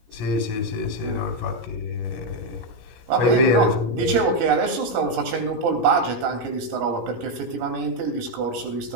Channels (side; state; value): left; late; 17 ms